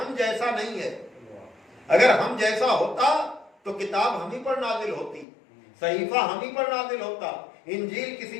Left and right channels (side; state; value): right; drops out; at 5.2 s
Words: جیسا نہیں ہے۔ اگر ہم جیسا ہوتا تو کتاب ہم ہی پر نازل ہوتی، صحیفہ ہم ہی پر نازل ہوتا، انجیل